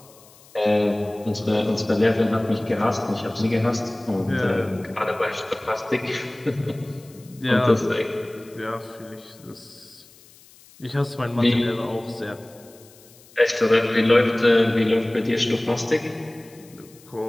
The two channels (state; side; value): noise; left; hiss, 25 dB below the sound